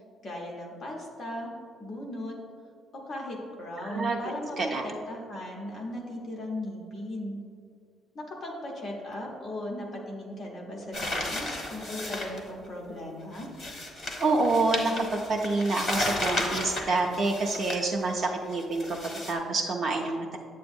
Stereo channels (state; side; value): normal; both; correlation 0.76